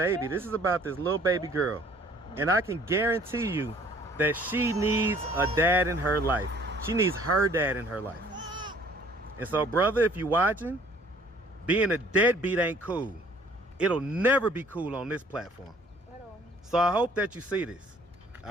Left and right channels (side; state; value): both; normal; correlation 0.56